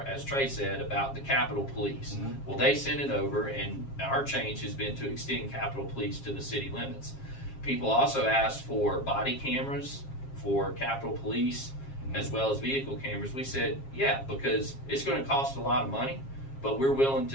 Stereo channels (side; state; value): right; late; 7.4 ms